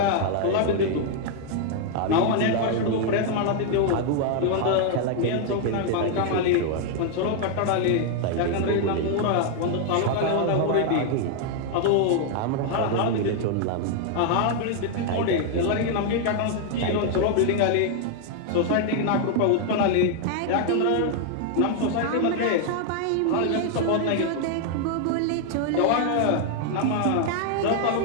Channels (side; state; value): both; different; correlation 0.00